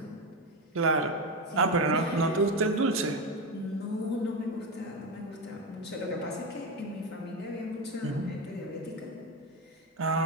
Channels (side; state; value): both; normal; correlation 0.14